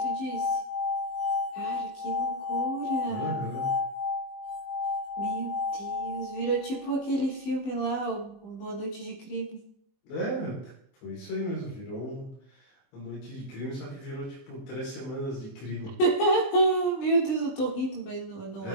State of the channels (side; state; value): right; late; 22 ms